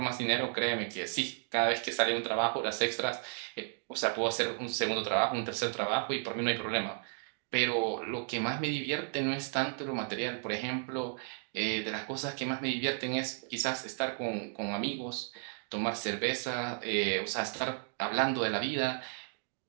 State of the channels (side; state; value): left; silent; 55 dB below the other